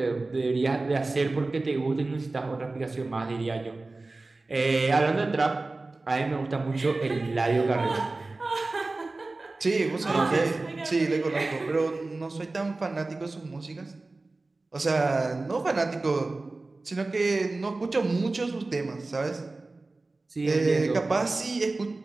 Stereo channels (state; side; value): quieter; left; 3.3 dB